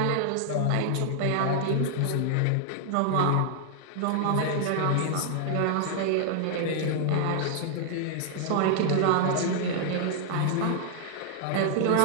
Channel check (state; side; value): different; both; correlation -0.01